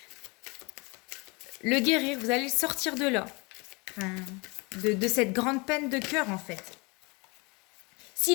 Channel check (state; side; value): quieter; right; 28.2 dB